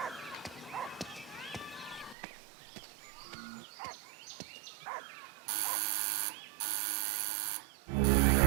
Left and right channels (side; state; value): left; drops out; at 2.1 s